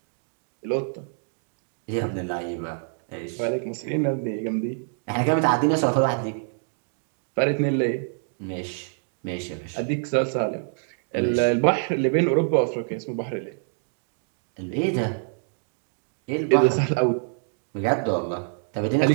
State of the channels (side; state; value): left; silent; 61 dB below the other